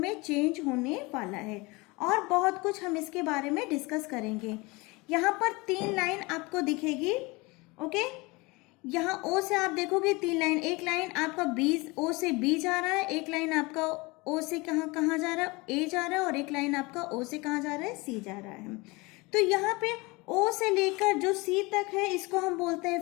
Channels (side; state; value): right; quieter; 24.7 dB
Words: चेंज होने वाला है, और बहुत कुछ हम इसके बारे में डिस्कस करेंगे। यहाँ पर 3 लाइन आपको दिखेगी। ओके, यहाँ ओ से आप देखोगे 3 लाइन, एक लाइन आपका बी, ओ से बी जा रहा है, एक लाइन आपका ओ से कहाँ जा रहा है, ए जा रहा है, और एक लाइन आपका ओ से कहाँ जा रहा है, सी जा रहा है। तो यहाँ पे ओ से लेकर जो सी तक है इसको हम बोलते हैं